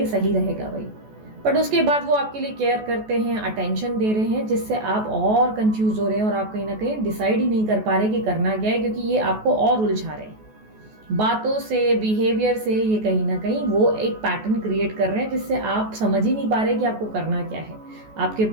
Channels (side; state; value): left; late; 14 ms